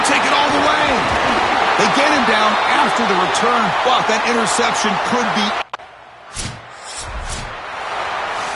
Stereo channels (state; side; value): identical; both; correlation 1.00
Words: take it all the way. They get him down after the return, but that interception could be...